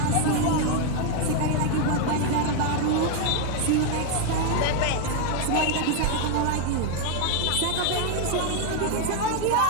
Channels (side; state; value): both; different; correlation 0.01